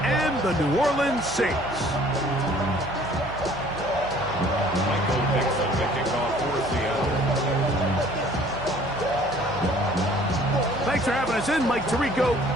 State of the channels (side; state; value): right; noise; hum, 17 dB below the sound